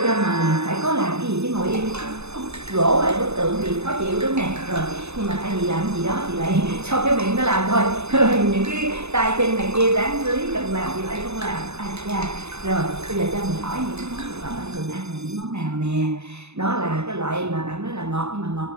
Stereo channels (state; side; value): late; left; 0.81 ms